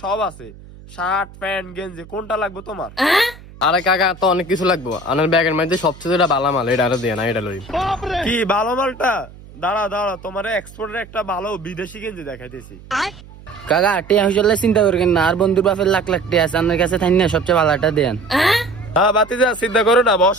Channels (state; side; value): noise; right; hum, 20 dB below the sound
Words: সব আছে, শার্ট প্যান্ট গেঞ্জি, কোনটা লাগবে তোমার? আরে কাকা তো অনেক কিছু লাগবো, আমার ব্যাগের মধ্যে সবচেয়ে ভালো মাল এটা আরো দিয়ে না, এটা লই। কি ভালো মালটা? দাঁড়া তোমার এক্সপোর্টের একটা ভালো বিদেশি গেঞ্জি দেখাইতেছি। কাকা টিয়া হইলে চিন্তা করবেন না, আর বন্ধুর বাপের লাখ লাখ টিয়া আছে, আপনার কাছে থাই না সবচেয়ে ভালোটা দেন। হ্যাঁ বাতিজা চিন্তা করো না,